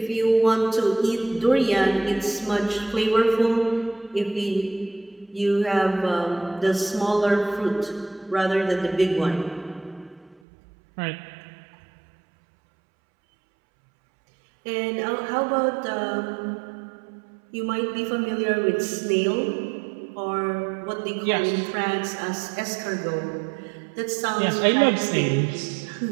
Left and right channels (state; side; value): drops out; left; at 10.4 s